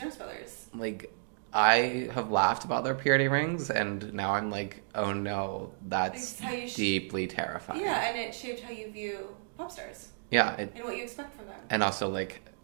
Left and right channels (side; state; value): left; silent; digital silence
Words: Brothers. like I have laughed about their purity rings, and now I'm like, oh no, that's It's how you deeply terrifying. Yeah, and it shaped how you view pop stars Yeah, and what you expect from them. and also like